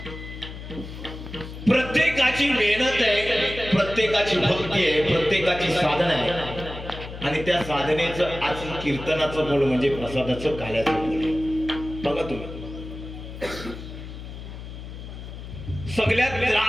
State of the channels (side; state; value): left; noise; hum, 11 dB below the sound